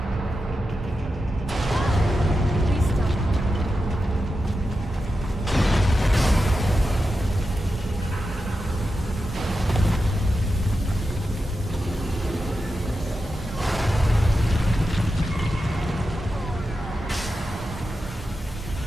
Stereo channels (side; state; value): both; normal; correlation 0.90